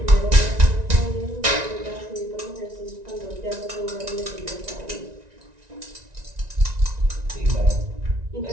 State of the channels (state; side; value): late; left; 1.9 ms